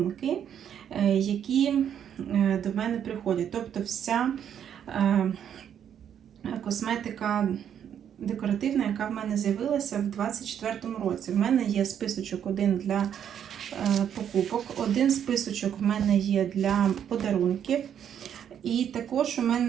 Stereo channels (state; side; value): quieter; left; 9.1 dB